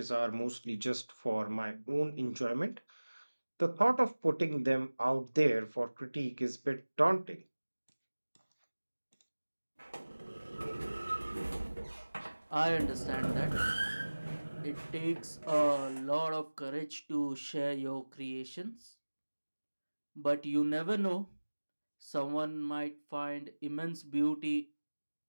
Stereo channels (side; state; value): both; inverted; correlation -1.00